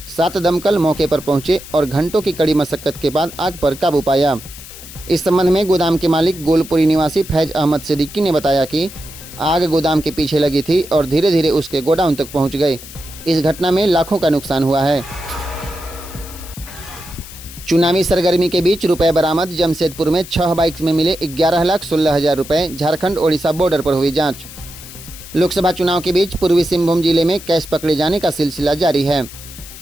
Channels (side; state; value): left; noise; hiss, 15 dB below the sound